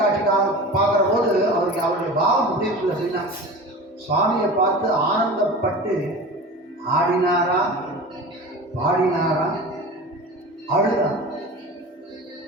பார்க்குற போது அவருக்கு அவருடைய பாவம் முடிவுக்குள்ள செய்யலாம். சுவாமியை பார்த்து ஆனந்தப்பட்டு ஆடினாரா பாடினாரா அழுதார்.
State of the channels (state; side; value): normal; both; correlation 0.34